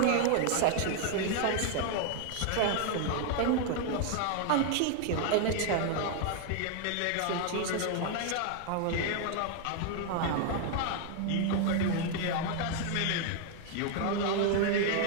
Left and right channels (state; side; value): different; both; correlation 0.00